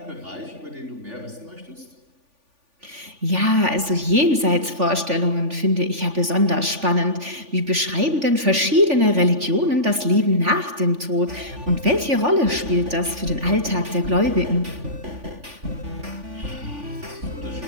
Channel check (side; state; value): left; late; 3.5 ms